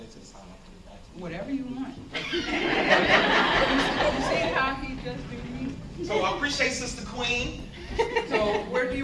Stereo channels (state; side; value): identical; both; correlation 1.00